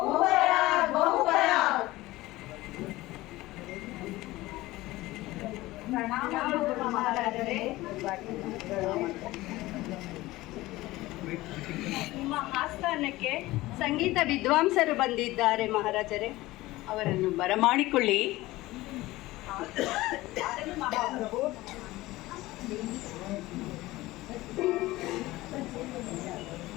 ಬಹುಪರ. ಮಹಾರಾಜರೇ, ನಿಮ್ಮ ಆಸ್ಥಾನಕ್ಕೆ ಸಂಗೀತ ವಿದ್ವಾಂಸರು ಬಂದಿದ್ದಾರೆ ಮಹಾರಾಜರೇ, ಅವರನ್ನು ಬರಮಾಡಿಕೊಳ್ಳಿ. ಮಹಾಪ್ರಭು.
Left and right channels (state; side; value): quieter; right; 18.5 dB